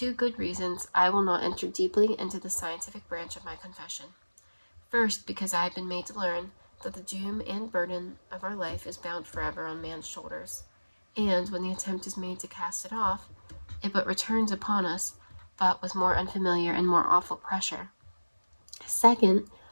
good reasons, I will not enter deeply into the scientific branch of my confession. First, because I have been made to learn that the doom and burden of our life is bound forever on man's shoulders, and when the attempt is made to cast it off, it but returns upon us, but with more unfamiliar and more awful pressure. Second,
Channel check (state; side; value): inverted; both; correlation -1.00